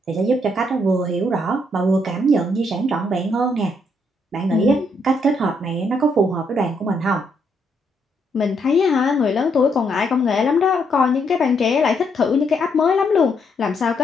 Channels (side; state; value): both; normal; correlation 0.74